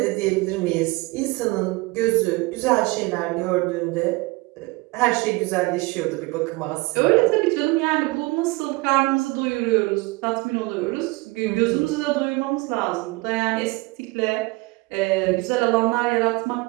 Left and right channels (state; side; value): quieter; left; 24.0 dB